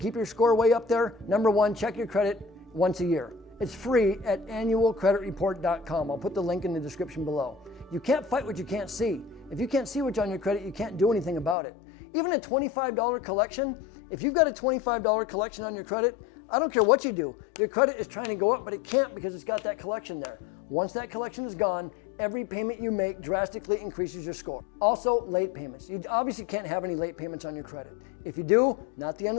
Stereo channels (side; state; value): right; drops out; at 11.6 s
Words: your score way up there. Number one, check your credit once a year. It's free at annualcreditreport.com. I'll put the link in the description below. You can't fight what you can't see. If you can't see what's on your credit, you can't do anything about it. Even a $25 collection, if you've got a $25 collection on your credit, I don't care what you do. Your credit is trying to go up, but it can't because it's got that collection there. Once that collection is gone, every payment you make drastically increases your score. Also, late payments. You obviously can't have any late payments on your credit. If you do, not the end